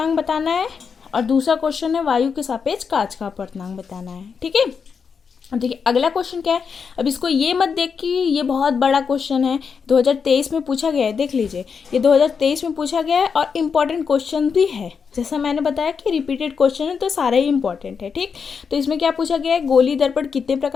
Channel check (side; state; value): right; quieter; 6.0 dB